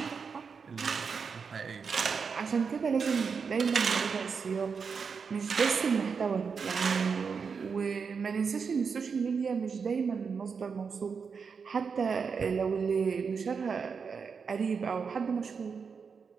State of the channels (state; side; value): quieter; left; 5.7 dB